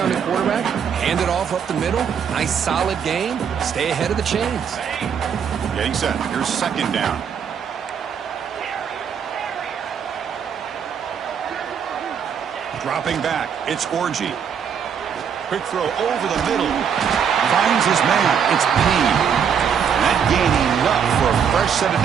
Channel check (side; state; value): left; quieter; 7.5 dB